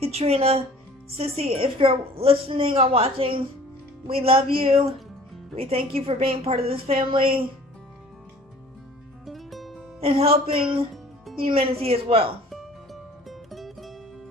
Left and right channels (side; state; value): both; normal; correlation 0.49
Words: Sissy, if you're listening or watching, we love you. We thank you for being part of this family and helping humanity as well.